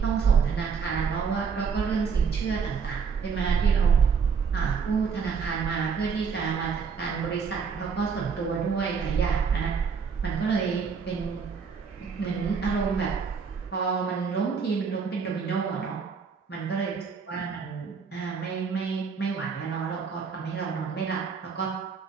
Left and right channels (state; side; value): quieter; left; 5.9 dB